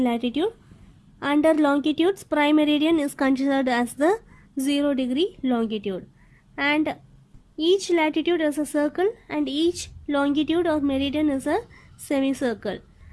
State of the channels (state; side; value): identical; both; correlation 1.00